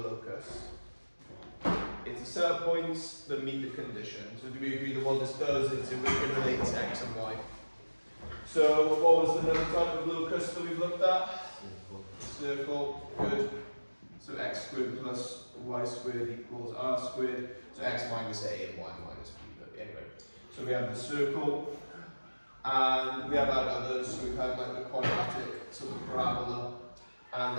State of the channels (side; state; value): both; inverted; correlation -1.00